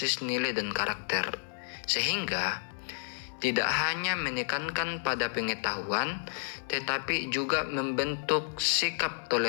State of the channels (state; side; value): silent; right; 57 dB below the other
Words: nilai dan karakter, sehingga tidak hanya menekankan pada pengetahuan, tetapi juga membentuk sikap